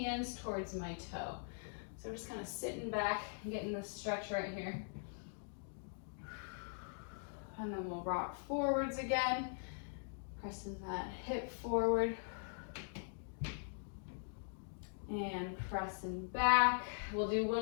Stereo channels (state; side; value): silent; right; digital silence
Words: towards my toe. So we're just kind of sitting back and getting this stretch right here. And then we'll rock forwards again. Pressing that hip forward and pressing back. We'll do